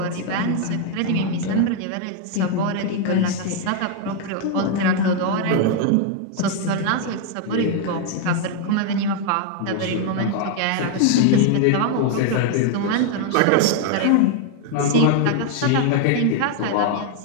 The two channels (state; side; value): different; both; correlation 0.00